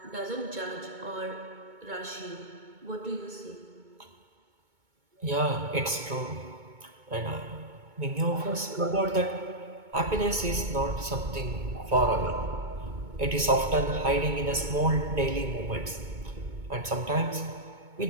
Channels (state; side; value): late; left; 2.2 ms